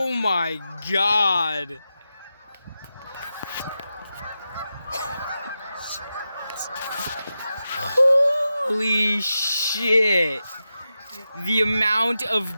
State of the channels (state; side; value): inverted; both; correlation -0.91